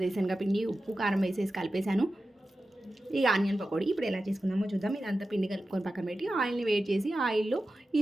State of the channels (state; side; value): normal; both; correlation 0.93